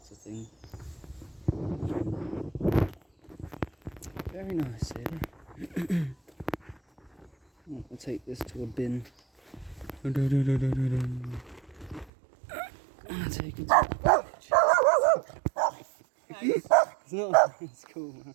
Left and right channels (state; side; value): drops out; left; at 12.1 s